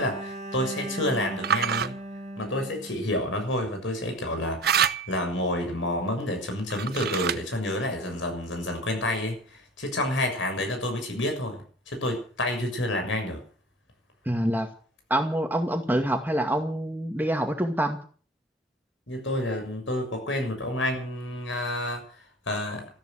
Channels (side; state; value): both; normal; correlation 0.41